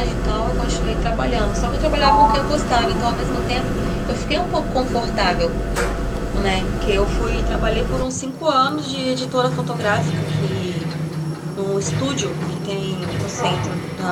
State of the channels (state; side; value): identical; both; correlation 1.00